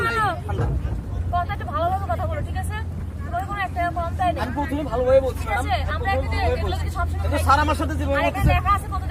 ঠান্ডা কথা একটু ভালোভাবে কথা বলো ঠিক আছে তোমার কোনো একটা কম তাই না আমি প্রথমে ভালোভাবে বলছি ঠিক ম্যাডাম আছে আমরা একটা এগুলো কি সব সময় কিন্তু স্যার আমার সাথে যেভাবে আর এখানে বলতেছে লেখা আছে কত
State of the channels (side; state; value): both; identical; correlation 1.00